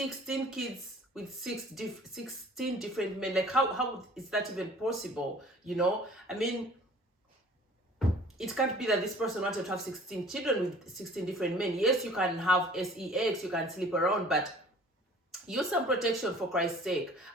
kids with 16 different men. Like, how is that even possible? You know, I mean, it can't be that this person wanted to have 16 children with 16 different men. Yes, you can have sex, you can sleep around, but use some protection for Christ's sake.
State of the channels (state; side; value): normal; both; correlation 0.49